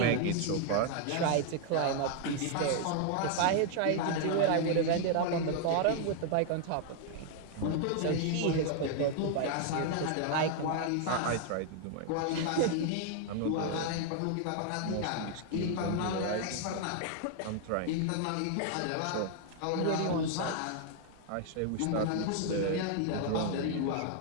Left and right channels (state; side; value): different; both; correlation 0.00